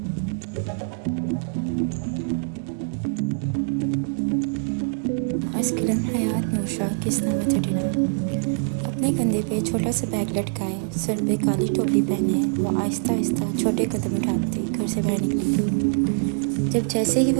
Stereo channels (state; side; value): silent; left; digital silence